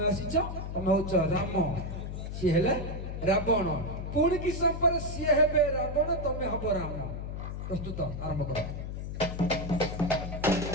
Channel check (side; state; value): left; noise; hum, 6 dB below the sound